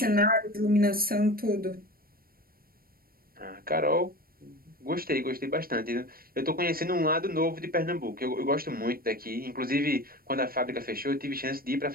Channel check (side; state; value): left; late; 0.43 ms